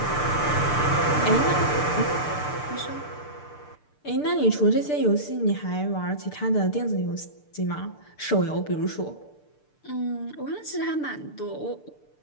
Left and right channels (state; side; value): late; right; 6.7 ms